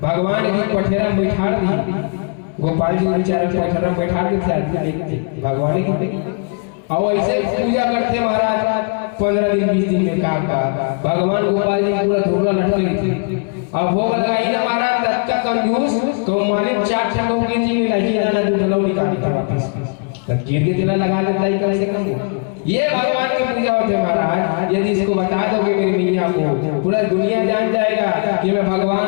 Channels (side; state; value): right; quieter; 38.0 dB